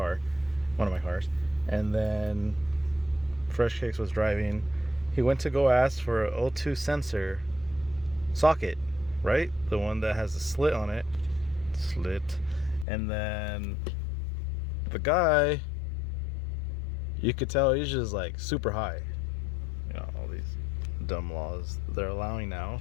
one of my cars, and then Freshhkiicks was driving. He went to go ask for an O2 sensor socket, right? The one that has a slit on it. And then the guy, you could tell he's just like super high. You know, all these dumb laws they're allowing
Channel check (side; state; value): right; drops out; at 12.9 s